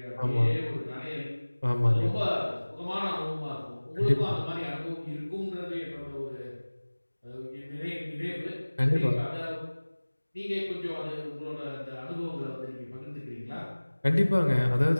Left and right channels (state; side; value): inverted; both; correlation -1.00